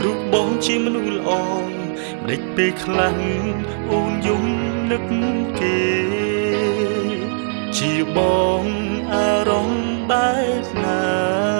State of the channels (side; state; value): left; silent; digital silence